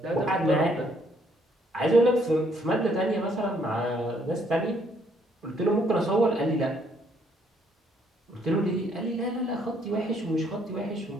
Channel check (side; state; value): both; normal; correlation 0.68